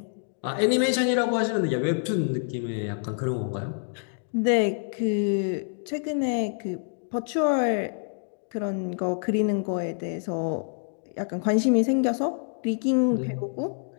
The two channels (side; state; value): right; silent; 60 dB below the other